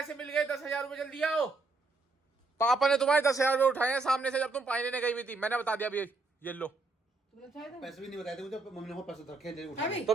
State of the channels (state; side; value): quieter; left; 3.5 dB